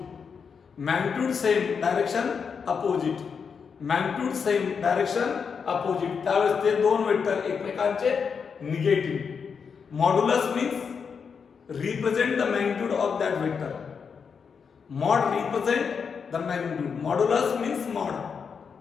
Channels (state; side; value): quieter; right; 6.1 dB